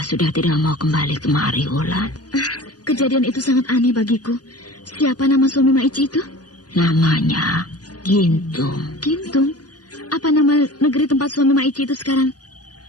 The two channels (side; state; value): right; late; 0.68 ms